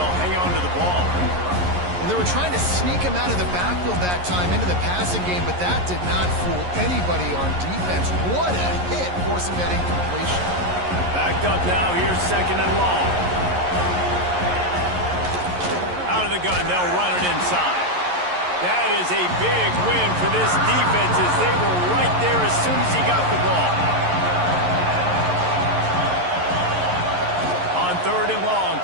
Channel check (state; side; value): late; left; 11 ms